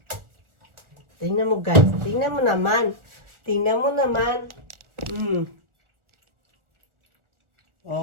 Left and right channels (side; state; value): left; late; 1.4 ms